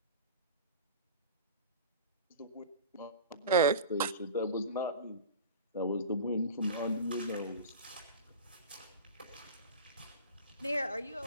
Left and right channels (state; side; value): inverted; both; correlation -0.33